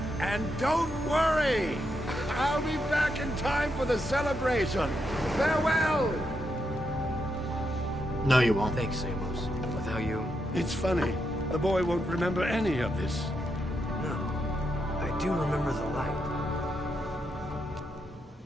And don't worry. I'll be back in time for the celebration. Farewell. No, you won't. Thanks, Amos. Without you... It's funny. The boy won't remember any of this. No. I do remember the light.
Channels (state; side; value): normal; both; correlation 0.82